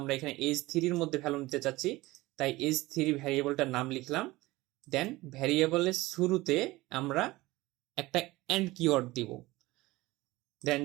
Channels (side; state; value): left; quieter; 19.6 dB